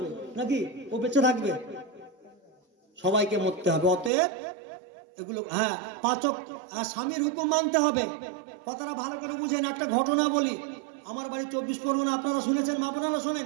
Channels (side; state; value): left; drops out; at 4.1 s